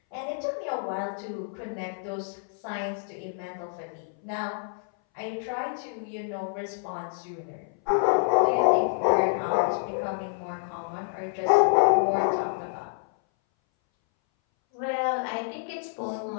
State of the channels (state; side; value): silent; right; 59 dB below the other